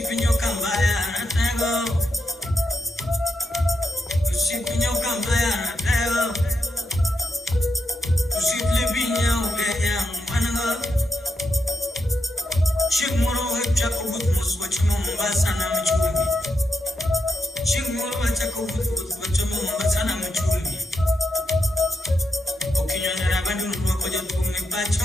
kambaya natego Ushipinyo kambaya natego Ushiplibinya ugeya manago Shikmuro wecha kubut muswachimu mbasa na mchumi Shikmuro wecha kubut muswachimu mbasa na mchumi Okinyonera baduru wakoja tume pacho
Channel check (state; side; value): normal; both; correlation 0.83